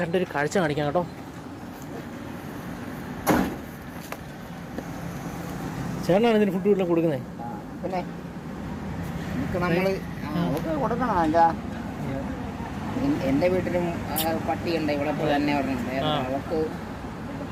കാഴ്ച കാണിക്കാം കേട്ടോ. ചേട്ടനാണ് ഇതിന് ഫുഡ് വീട്ടിൽ കൊടുക്കുന്നത്. പിന്നെ നമ്മൾ കൊടുക്കണം. എന്താ എൻ്റെ വീട്ടിലും പട്ടിയുണ്ട് ഇവിടെ തന്നെ പറഞ്ഞിട്ടുണ്ട്. അവർക്ക്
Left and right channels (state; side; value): identical; both; correlation 1.00